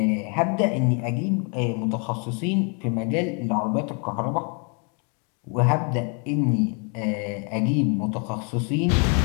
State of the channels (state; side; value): quieter; right; 37.2 dB